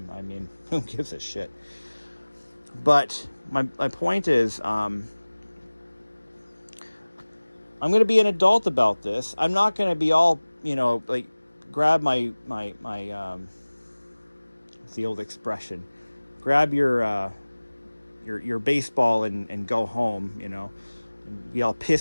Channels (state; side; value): inverted; both; correlation -1.00